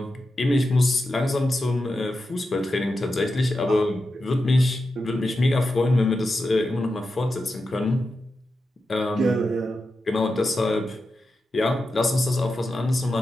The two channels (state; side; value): normal; both; correlation 0.90